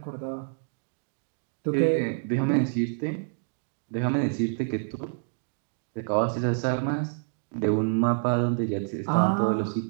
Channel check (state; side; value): silent; left; digital silence